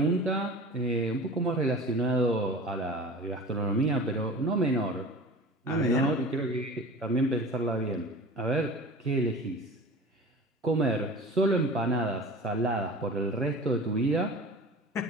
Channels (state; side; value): normal; both; correlation 0.38